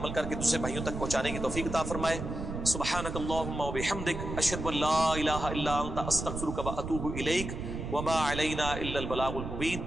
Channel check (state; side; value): noise; right; rumble, 6 dB below the sound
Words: کر کے دوسرے بھائیوں تک پہنچانے کی توفیق عطا فرمائے. سبحانک اللہم و بحمدک, اشہد ان لا الہ الا انت, استغفرک و اتوب الیک, وما علینا الا البلاغ المبین.